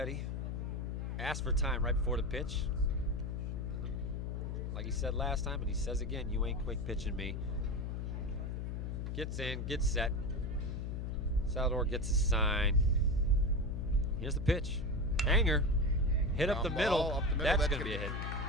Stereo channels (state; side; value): noise; left; hum, 3 dB below the sound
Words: Asks for time right before the pitch. Like he said last time, and he says again, you ain't quick pitching me. Gets in, gets set. Salvador gets his sign. Here's the pitch. Hanger. Hit up the Ground middle. ball up the middle. That's going to be a hit.